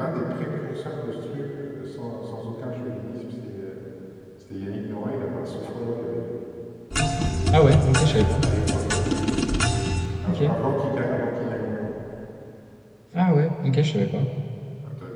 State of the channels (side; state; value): both; identical; correlation 1.00